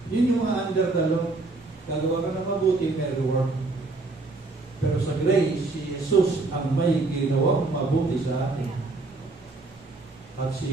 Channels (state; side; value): quieter; left; 3.4 dB